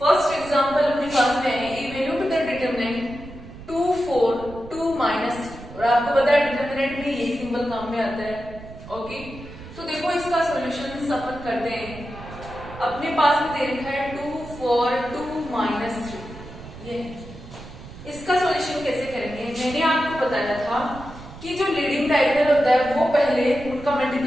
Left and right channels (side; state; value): right; noise; rumble, 15 dB below the sound